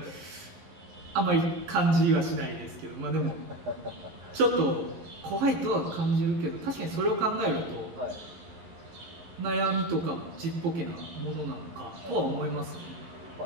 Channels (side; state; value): left; late; 11 ms